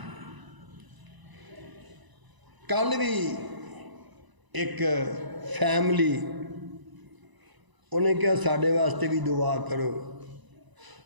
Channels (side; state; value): left; late; 1.0 ms